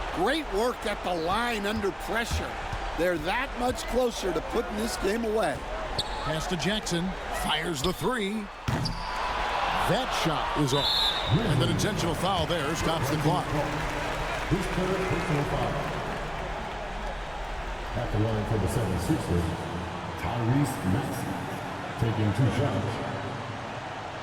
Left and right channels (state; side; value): identical; both; correlation 1.00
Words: Great work at the line under pressure. They're that much closer to putting this game away. Pass to Jackson, fires the 3. That shot is off, and an intentional foul there stops the clock. His third personal foul. At the line for the 76ers, Tyrese Maxey, taking 2 shots.